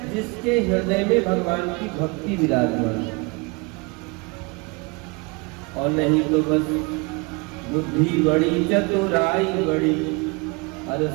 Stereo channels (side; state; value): left; quieter; 28.5 dB